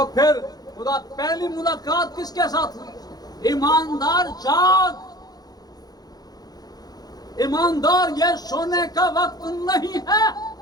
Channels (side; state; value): right; late; 0.19 ms